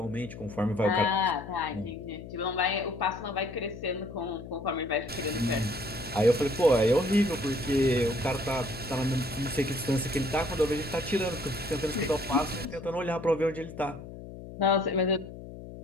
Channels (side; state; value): left; noise; hum, 13 dB below the sound